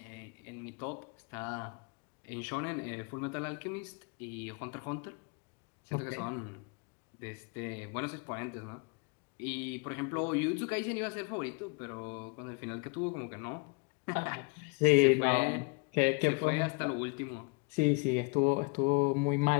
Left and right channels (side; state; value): right; quieter; 31.1 dB